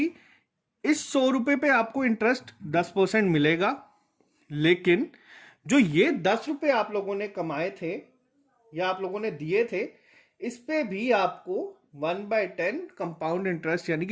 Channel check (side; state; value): both; identical; correlation 1.00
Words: इस 100 रुपये पे आपको इंटरेस्ट 10% मिलेगा, लेकिन जो ये 10 रुपये आप लोगों ने कमाए थे या आप लोगों ने दिए थे, इस पे भी आपको 1/10 कंपाउंड इंटरेस्ट, यानी